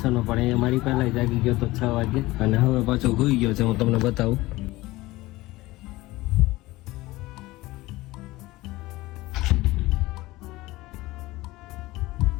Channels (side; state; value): right; quieter; 19.2 dB